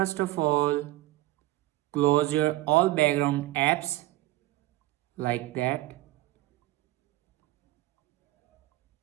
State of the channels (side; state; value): left; quieter; 17.3 dB